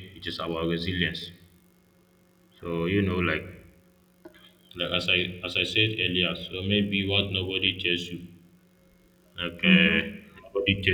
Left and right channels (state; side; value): identical; both; correlation 1.00